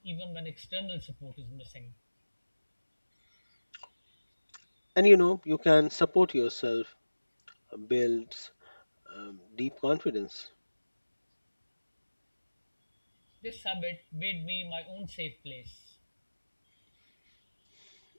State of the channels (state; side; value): inverted; both; correlation -1.00